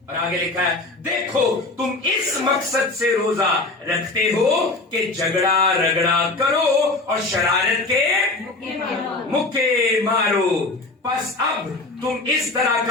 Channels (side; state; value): right; quieter; 3.2 dB